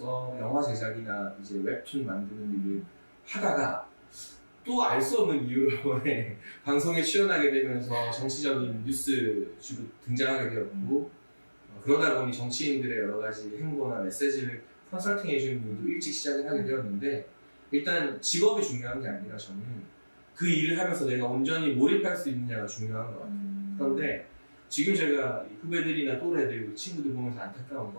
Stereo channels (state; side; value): inverted; both; correlation -1.00